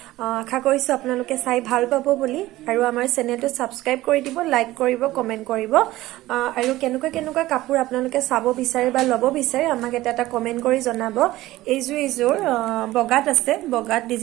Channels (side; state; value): left; quieter; 16.8 dB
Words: আশা কৰিছো আপোনালোকে চাই ভাল পাব বুলি আৰু আমাৰ চেনেলটো সাবস্ক্ৰাইব কৰি দিব লাইক কৰিব কমেন্ট কৰিব আৰু কেনেকুৱা কাপোৰ আপোনালোকে চাব বিচাৰে বা লব বিচাৰে আমাক এটা কমেন্ট কৰি জনাব এইযোৰ বগাত আছে বগাত